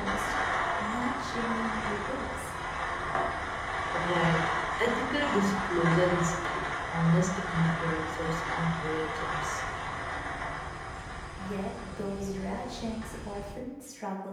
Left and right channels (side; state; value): both; identical; correlation 1.00